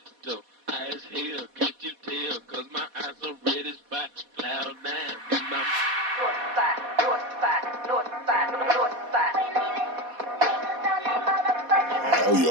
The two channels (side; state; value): left; late; 4.2 ms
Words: high as hell, can't you tell, cause my eyes are red as fire, cloud nine, in my